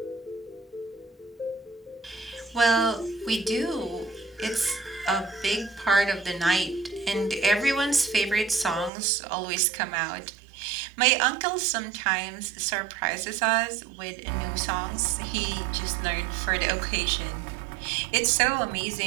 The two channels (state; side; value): drops out; left; at 8.9 s